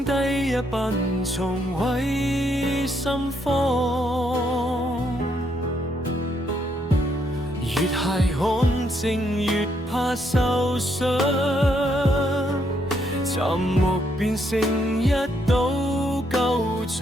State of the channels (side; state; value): both; normal; correlation 0.74